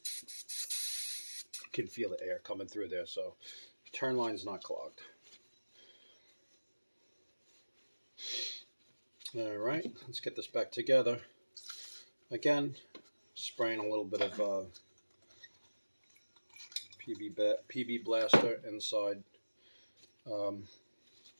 You can feel the air coming through there, so return line's not clogged. All right, let's get this back together. Again, spraying a little bit of PB blaster inside.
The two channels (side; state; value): both; inverted; correlation -1.00